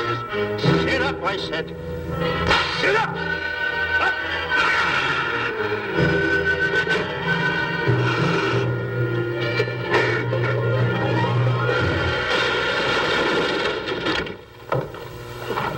is. Sit up, I said. Sit up. Up.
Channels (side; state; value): both; identical; correlation 1.00